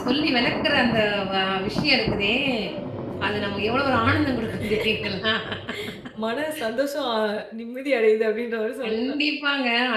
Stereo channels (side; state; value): both; identical; correlation 1.00